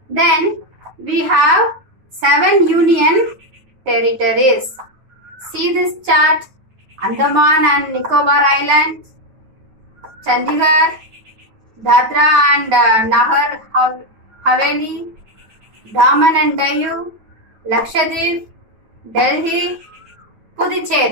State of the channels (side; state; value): left; late; 9.1 ms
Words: Then we have 7 union territories. See this chart. Andaman and Nicobar Islands, Chandigarh, Dadra and Nagar Haveli, Daman and Diu, Lakshadweep, Delhi,